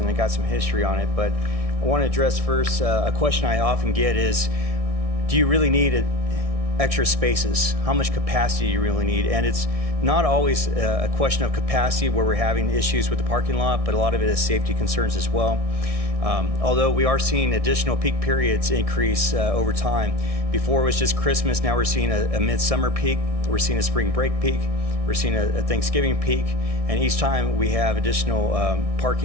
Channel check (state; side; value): late; left; 1.6 ms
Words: I got some history on it, but I want to address first a question I often get is, do you really need extra spaces? How much capacity do you really need? And it's not always a question of capacity where we're having issues with the parking lot, but a lot of it is safety concerns as well. Although we are seeing additional peak periods increase over time. Before it was just Christmas, now we're seeing a midsummer peak, we're seeing a spring break peak, we're seeing a Thanksgiving peak, and each time we have additional